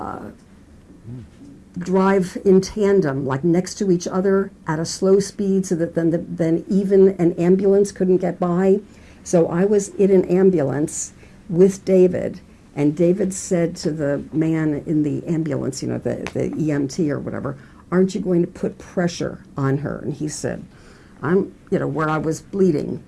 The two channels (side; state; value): both; identical; correlation 1.00